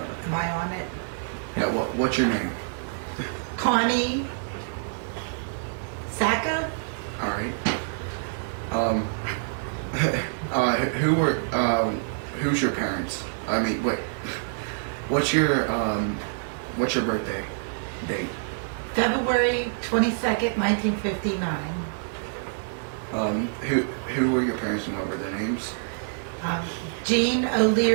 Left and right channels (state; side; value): silent; left; 58 dB below the other